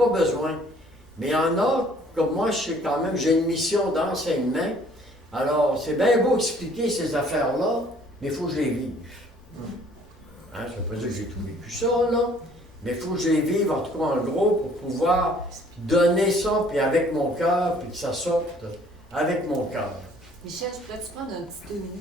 besoin. Mais il y en a, comme moi, je sais quand même, j'ai une mission d'enseignement. Alors, c'est bien beau expliquer ces affaires-là, mais il faut que je les vive. Hein, ça ne veut pas dire que j'ai tout vécu ça, là. Mais il faut que je les vive, en tout cas en gros, pour pouvoir donner ça, puis avec mon cœur, puis que ça sorte avec mon cœur. Michel, je pourrais-tu prendre un petit 2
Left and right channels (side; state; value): both; normal; correlation 0.57